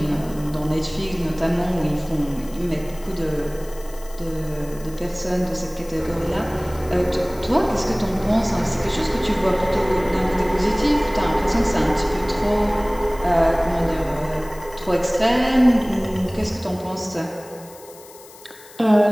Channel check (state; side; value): noise; left; hiss, 21 dB below the sound